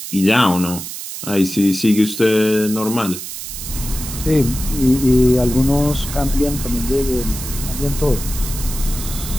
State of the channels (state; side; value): noise; right; hiss, 9 dB below the sound